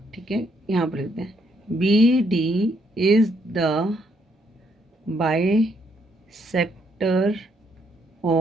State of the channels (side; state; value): both; normal; correlation 0.72